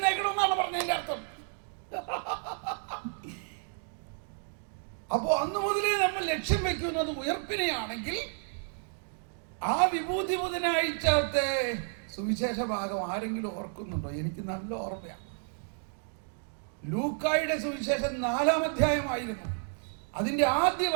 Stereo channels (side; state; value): left; silent; 57 dB below the other